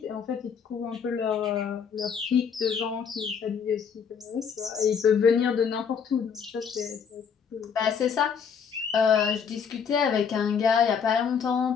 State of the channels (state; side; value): quieter; right; 6.7 dB